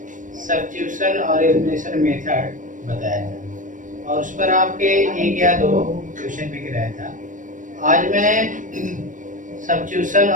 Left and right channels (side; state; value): left; late; 0.38 ms